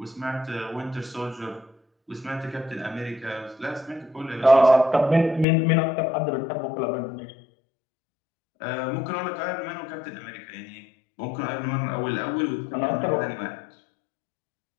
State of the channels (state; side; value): drops out; right; at 5.5 s